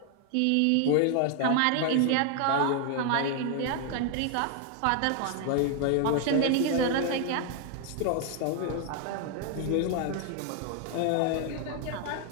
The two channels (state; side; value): different; both; correlation 0.00